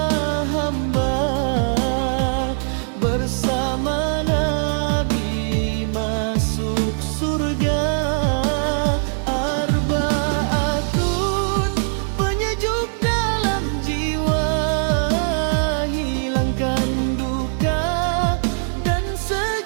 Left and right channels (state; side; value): silent; left; digital silence